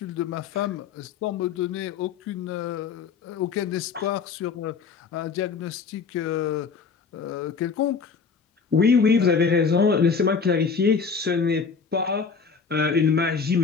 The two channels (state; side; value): quieter; right; 5.5 dB